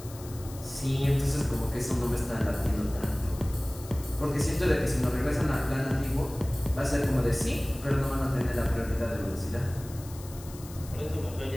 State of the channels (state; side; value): noise; left; hiss, 18 dB below the sound